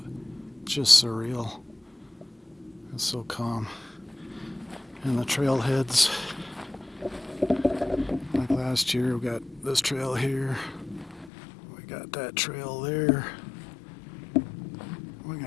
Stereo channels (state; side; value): drops out; right; at 11.3 s